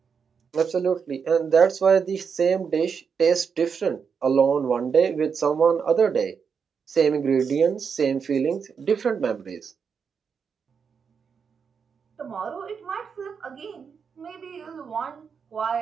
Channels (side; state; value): left; quieter; 6.3 dB